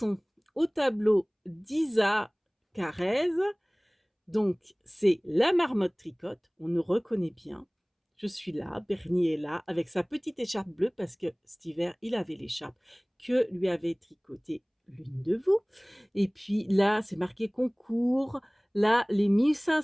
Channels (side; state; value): both; identical; correlation 1.00